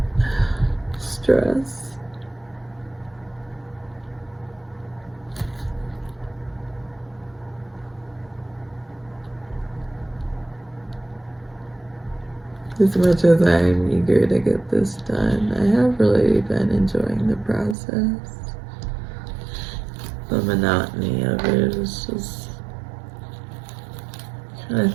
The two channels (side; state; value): left; drops out; at 17.8 s